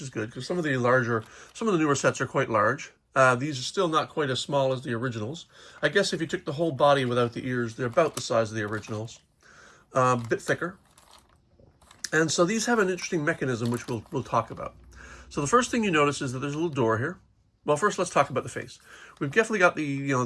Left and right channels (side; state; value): both; identical; correlation 1.00